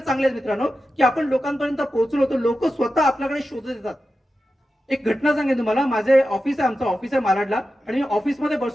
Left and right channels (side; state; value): both; normal; correlation 0.92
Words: चांगले आहेत मित्रांनो की आपण लोकांपर्यंत पोहोचलो होतो. लोक स्वतः आपल्याकडे शोधत येतात. एक घटना सांगेन तुम्हाला. माझे ऑफिस आहे, आमचं ऑफिस आहे मालाडला आणि मी ऑफिसमध्ये